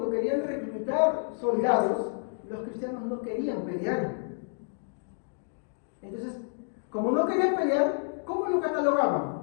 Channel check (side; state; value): right; silent; digital silence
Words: querían reclutar soldados, los cristianos no querían pelear. Entonces, como no querían pelear, ¿cómo lo catalogaban?